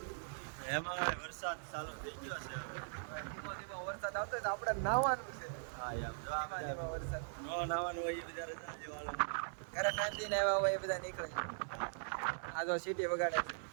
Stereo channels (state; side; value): silent; left; digital silence